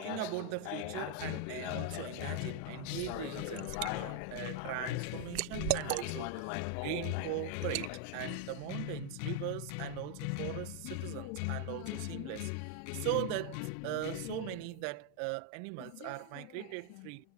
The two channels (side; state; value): both; different; correlation 0.00